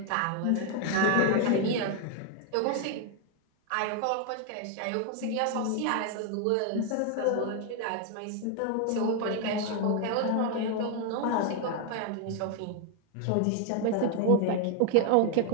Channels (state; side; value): different; both; correlation 0.00